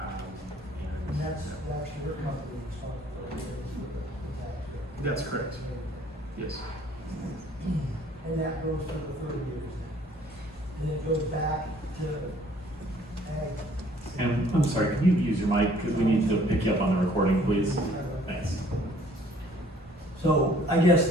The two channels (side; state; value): both; normal; correlation 0.58